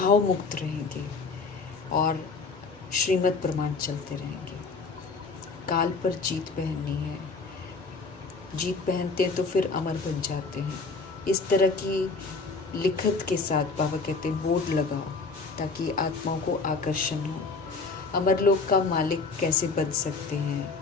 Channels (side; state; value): right; quieter; 4.2 dB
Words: मुक्त रहेंगे और श्रीमद् प्रमाण चलते रहेंगे। काल पर जीत पहननी है, जीत पहनते हैं तो फिर अमर बन जाते हैं। इस तरह की लिखत के साथ बाबा कहते हैं बोर्ड लगाओ, ताकि आत्माओं को आकर्षण हो। अमर लोक का मालिक कैसे बन सकते हैं,